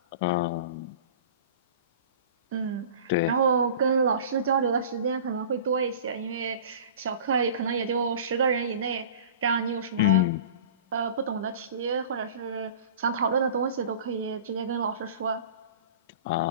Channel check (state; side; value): inverted; both; correlation -0.40